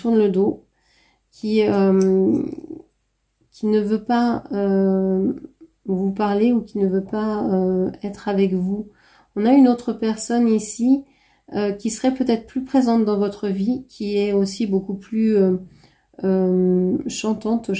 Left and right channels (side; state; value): both; identical; correlation 1.00